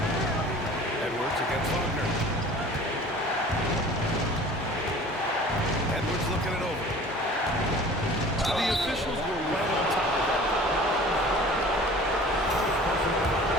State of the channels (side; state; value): both; normal; correlation 0.45